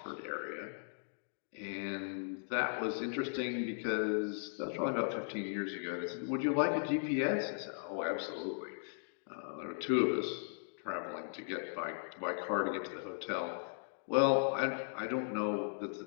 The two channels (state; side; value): silent; right; digital silence